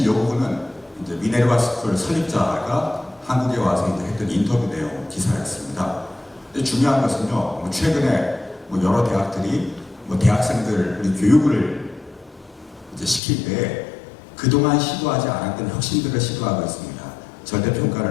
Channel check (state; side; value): drops out; right; at 13.2 s